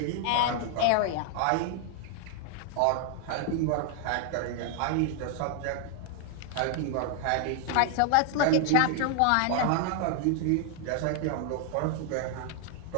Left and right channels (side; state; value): both; different; correlation 0.00